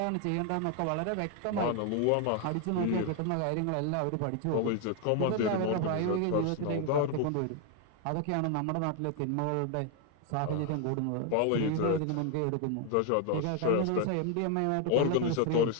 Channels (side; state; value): both; different; correlation 0.01